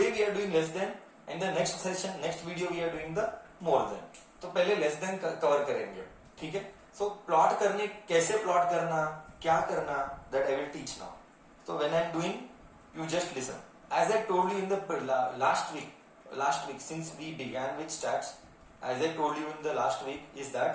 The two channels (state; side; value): identical; both; correlation 1.00